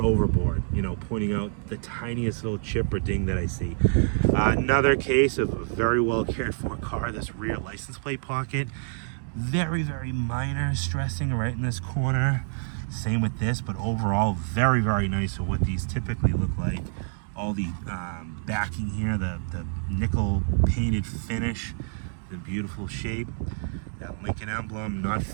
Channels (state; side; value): silent; left; digital silence